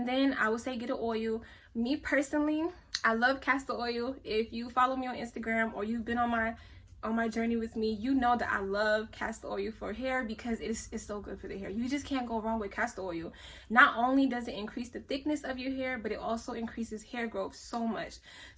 then I would say get an oil. Me personally, I love castor oil. If you follow me on Instagram or you've been on my journey with me, you know that I love castor oil for hair, because it's so good for the hair. You just can't go wrong with castor oil. Not only does it increase the thickness of your hair, but it also increases hair growth so much.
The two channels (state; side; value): identical; both; correlation 1.00